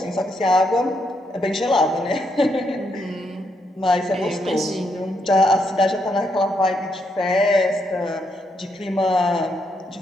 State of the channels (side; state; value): both; normal; correlation 0.77